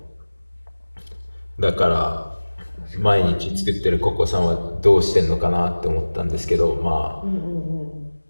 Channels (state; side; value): inverted; both; correlation -1.00